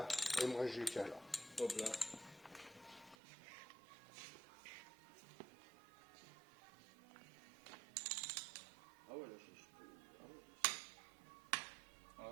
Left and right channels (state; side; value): drops out; left; at 3.2 s